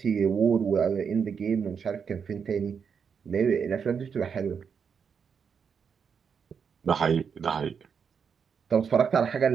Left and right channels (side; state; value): left; quieter; 6.6 dB